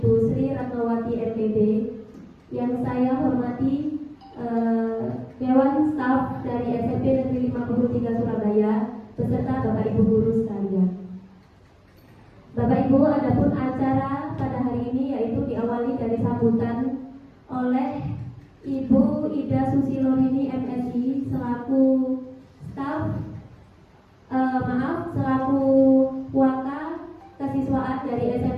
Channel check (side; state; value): both; identical; correlation 1.00